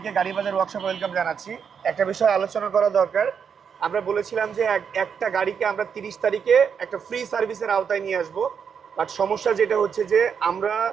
গাড়ি বাজার ওয়ার্কশপ ওয়েলকাম জানাচ্ছি। একটা বিষয় আলোচনা করা দরকার। আমরা বলেছিলাম যে একটা গাড়িকে আমরা 30 তারিখে একটা ফ্রি সার্ভিসের আওতায় নিয়ে আসব। বাট সমস্যা যেটা হচ্ছে যে আমরা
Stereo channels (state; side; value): quieter; left; 6.9 dB